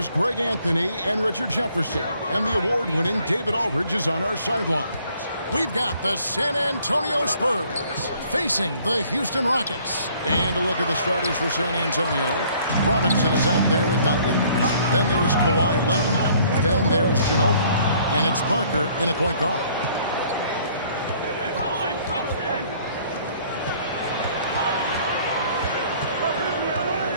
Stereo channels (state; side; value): inverted; both; correlation -0.59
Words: Greg Anthony and Richard Jefferson. And the award-winning David Aldridge is on our sidelines. We've got the San Antonio Spurs facing the Houston Rockets. And a look at the starters for San Antonio. Robinson is out there with Duncan. Then there's Kawhi Leonard. Then there's Ginobili. And it's Parker in at point guard.